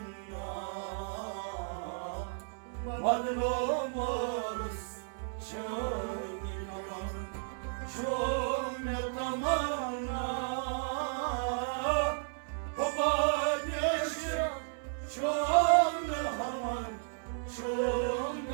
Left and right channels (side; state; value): left; silent; 55 dB below the other